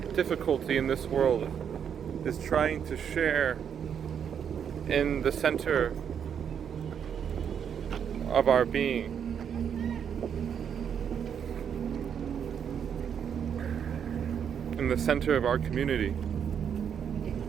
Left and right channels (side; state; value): left; quieter; 8.0 dB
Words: difficulty in this world is trying to share in the center of our being. In the center of our community.